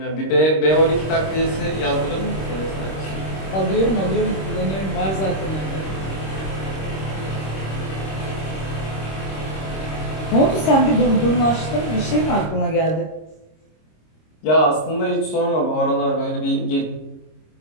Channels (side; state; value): right; late; 26 ms